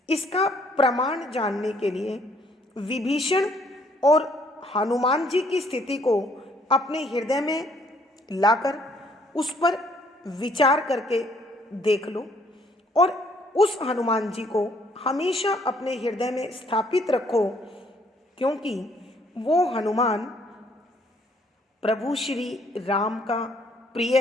इसका प्रमाण जानने के लिए विभीषण और हनुमान जी की स्थिति को अपने हृदय में लाकर उस पर विचार करके देख लो और उस हनुमान जी को हमेशा अपने हृदय में स्थापित रखो, क्योंकि वो हनुमान प्रभु श्री राम का प्रिय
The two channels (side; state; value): both; normal; correlation 0.64